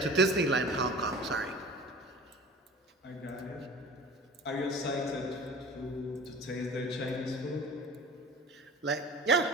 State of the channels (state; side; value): normal; both; correlation 0.40